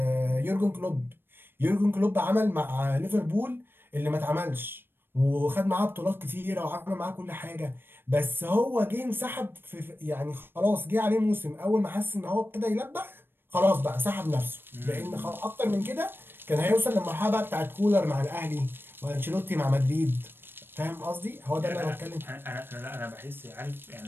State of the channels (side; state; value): left; late; 0.10 ms